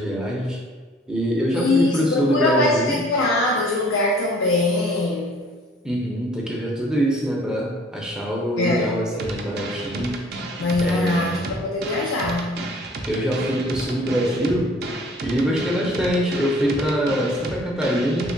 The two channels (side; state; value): both; normal; correlation 0.55